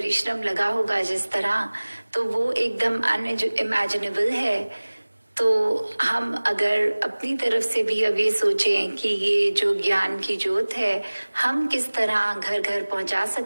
लगा होगा जिस तरह, तो वो एकदम अनइमेजिनेबल है। तो हम अगर अपनी तरफ से भी अब ये सोचें कि ये जो ज्ञान की ज्योत है हम किस तरह घर घर पहुंचा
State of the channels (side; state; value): both; inverted; correlation -1.00